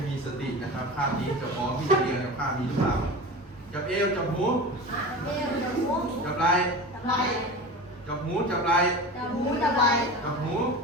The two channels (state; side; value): normal; both; correlation 0.31